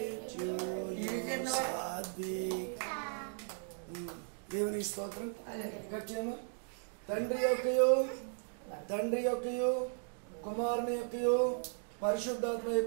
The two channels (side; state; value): left; silent; digital silence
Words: to you Satvik. దేవునికి స్తోత్రం. Cut చేయమా. తండ్రి యొక్కయు కుమారుని యొక్కయు పరిశుద్ధాత్మ